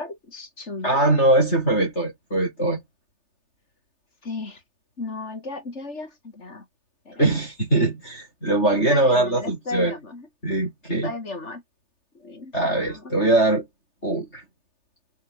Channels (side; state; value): right; late; 3.3 ms